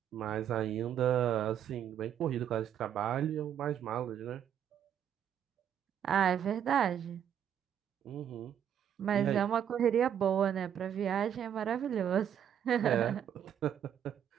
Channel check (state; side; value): quieter; left; 9.3 dB